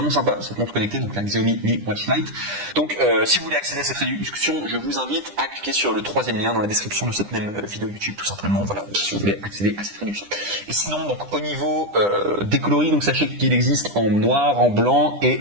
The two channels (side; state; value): left; late; 9.9 ms